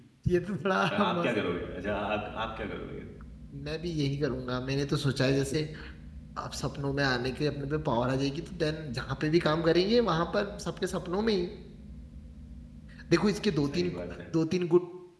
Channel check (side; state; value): both; identical; correlation 1.00